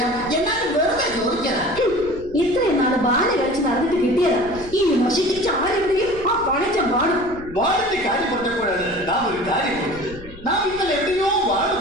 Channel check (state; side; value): noise; left; rumble, 18 dB below the sound